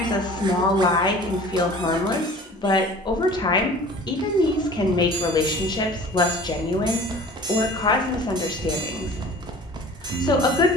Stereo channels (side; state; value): both; normal; correlation 0.44